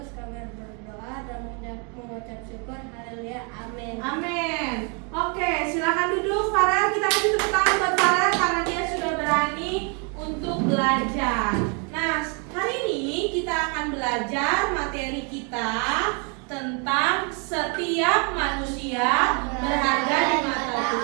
kami berdoa dan mengucap syukur. Haleluya, amin. Amin. Oke, silakan duduk Farel. Kita kasih tepuk tangan buat Farel karena dia sudah berani untuk belajar. Nah, hari ini kita akan belajar materi kita tentang setiap manusia berharga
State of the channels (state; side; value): quieter; left; 35.8 dB